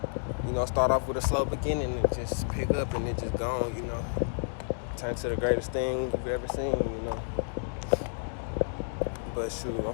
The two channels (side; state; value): right; silent; digital silence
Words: start off with a slow beginning and just pick up and it just gone, turn to the greatest thing you've ever seen, But shoot, I'm